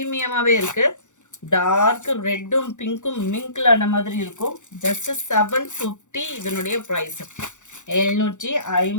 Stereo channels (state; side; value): late; right; 0.85 ms